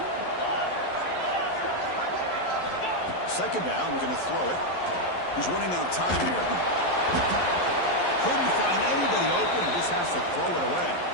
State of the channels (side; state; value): right; late; 11 ms